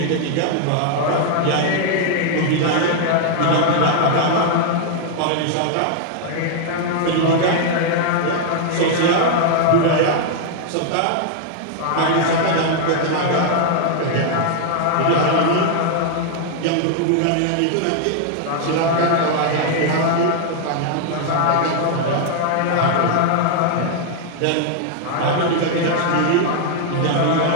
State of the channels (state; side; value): different; both; correlation 0.00